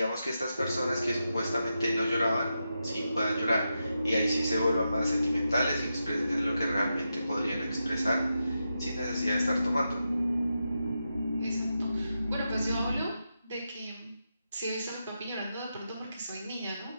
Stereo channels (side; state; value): both; inverted; correlation -0.88